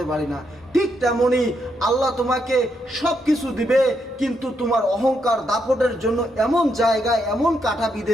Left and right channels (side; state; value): both; normal; correlation 0.79